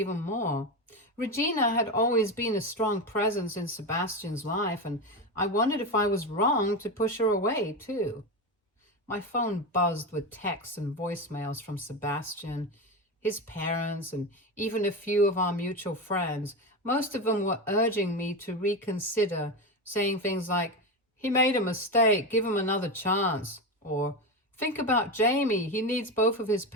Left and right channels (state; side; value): normal; both; correlation 0.17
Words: more. Regina had always been a strong presence in Sebastian's life, and I wondered if I was wrong to push her away, too. My phone buzzed with texts and voicemails from Sebastian, his parents, and even a few of our mutual friends. Most of them were urging me to reconsider, saying things like, "He made a mistake, give him another chance," or "Think about Jamie, he needs both of his